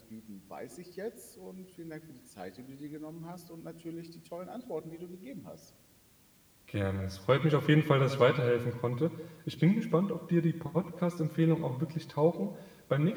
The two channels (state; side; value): identical; both; correlation 1.00